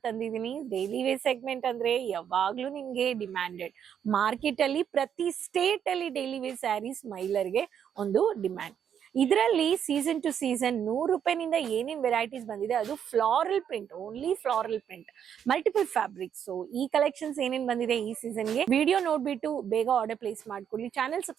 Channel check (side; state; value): left; quieter; 8.6 dB